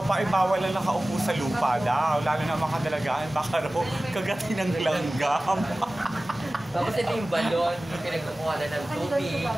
pa ay bawal lang nakaupo sa lupa daw. Lalo na mga dalagaan, baka raw kagatin ng langgam. Tapos ito yung balon, yung pinagkukuha na ng tubig.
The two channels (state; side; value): normal; both; correlation 0.97